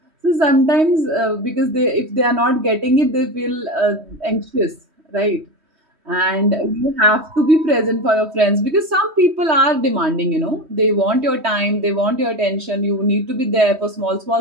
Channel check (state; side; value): late; left; 3.1 ms